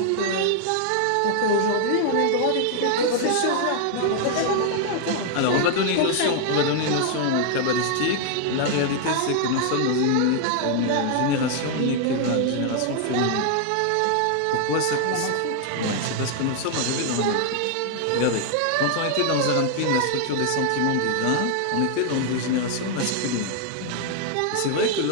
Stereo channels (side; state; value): both; different; correlation 0.00